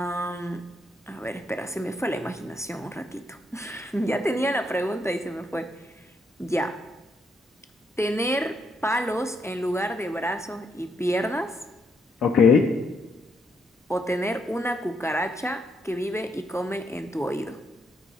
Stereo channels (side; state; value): both; normal; correlation 0.76